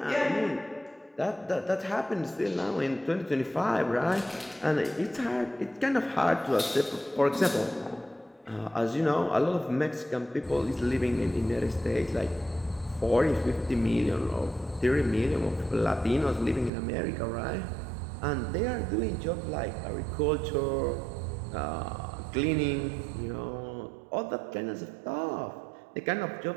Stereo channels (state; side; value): drops out; left; at 16.7 s